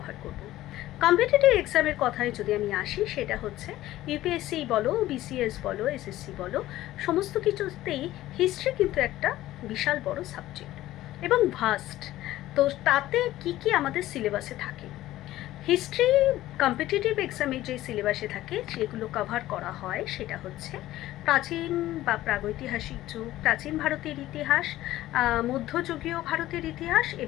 করব। কম্পিটিটিভ এক্সামের কথায় যদি আমি আসি, সেটা হচ্ছে ইউপিএসসি বলো, বিসিএস বলো, এসএসসি বলো, সমস্ত কিছুতেই হিস্ট্রি কিন্তু একটা বিশাল বড় সাবজেক্ট এবং ভাস্ট। তো তাতে কি কি আমাদের সিলেবাসে থাকে, হিস্ট্রি কম্পিটিটিভ এক্সামে যে সিলেবাসে থাকে যেগুলো কভার করা হয় সেটা হচ্ছে প্রাচীন বা প্রাগৈতিহাসিক যুগ, প্রাচীন ভারতের ইতিহাস, মধ্যযুগীয় ভারতের ইতিহাস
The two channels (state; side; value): quieter; right; 15.2 dB